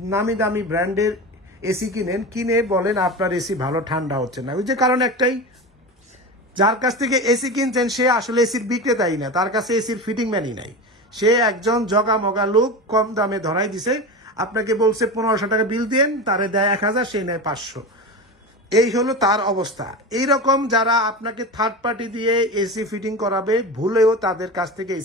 নামি দামি ব্র্যান্ডের এসি কিনে বলেন আপনার এসি ভালো ঠান্ডা হচ্ছে না। ওই যে কারণ একটাই, যার কাছ থেকে এসি কিনছেন সে আসলে এসির বিক্রেতাই না, তার কাছে এসির ফিটিং ম্যানই নাই। সে একজন জগা মগা লোক কম দামে ধরাই দিছে, আপনাকে বলছে 1500 টাকা বিল দেন, তারে দেয় 1000, সে নেয় 500। এই হলো তার অবস্থা। এইরকম যারা আপনাকে থার্ড পার্টি দিয়ে এসি ফিটিং করাবে, ভুলেও তাদের কাছ থেকে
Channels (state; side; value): normal; both; correlation 0.25